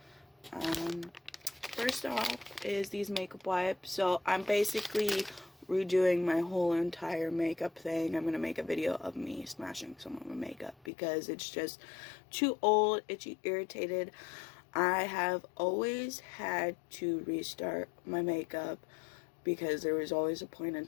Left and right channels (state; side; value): drops out; right; at 10.9 s